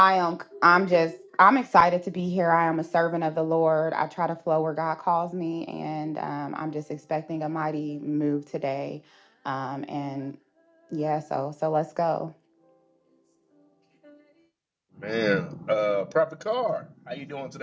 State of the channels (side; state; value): both; identical; correlation 1.00